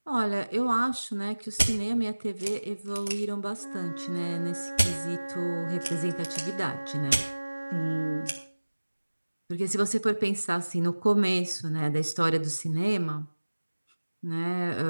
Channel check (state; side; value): inverted; both; correlation -1.00